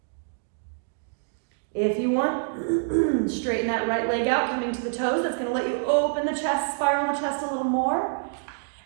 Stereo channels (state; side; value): silent; left; digital silence